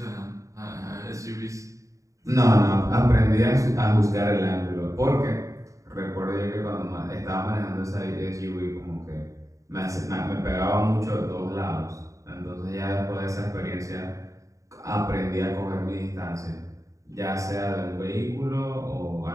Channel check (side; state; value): left; late; 0.16 ms